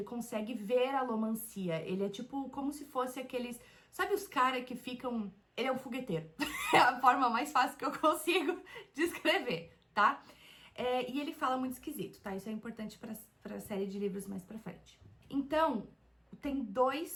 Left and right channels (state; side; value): identical; both; correlation 1.00